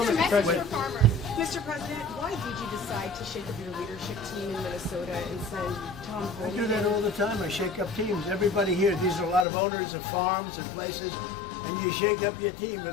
that the Message for president farmers. Mr. President, why did you decide to shake up your leadership team in Minnesota and send Tom I do Homan? that all the time. I shake up teams. Everybody here, these are a lot of owners of farms and places, and you shake up your team.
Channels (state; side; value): drops out; right; at 9.5 s